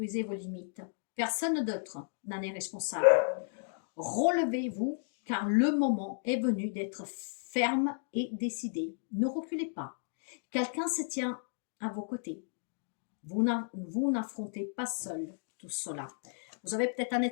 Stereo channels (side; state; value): right; silent; digital silence